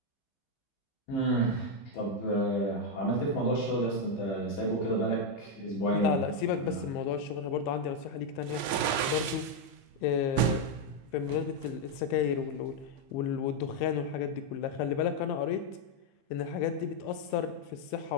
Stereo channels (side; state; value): right; late; 15 ms